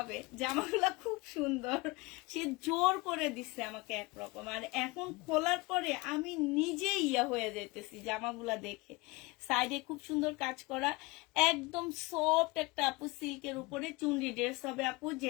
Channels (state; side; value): quieter; right; 23.8 dB